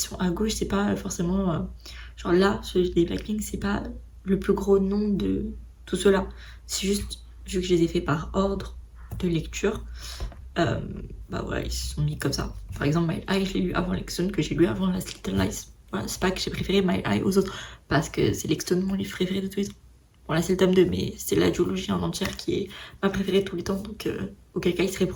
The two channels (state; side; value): identical; both; correlation 1.00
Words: à gauche, c'est pas forcément... genre là, celui des Blackpink, c'est pas le plus gros nom de tout cela. C'est juste, vu que je les ai fait par ordre de lecture, bah voilà, ils se sont mis comme ça. Par exemple, My Eye, je l'ai lu avant Lexton, que j'ai lu avant Last Little Lies. Voilà, c'est pas que j'ai préféré My Eye aux autres, parce que c'est Lexton mon livre préféré de tous les temps. Bon là c'est le tome 2, mais c'est la duologie en entière qui est ma préférée de tous les temps, donc auquel cas il serait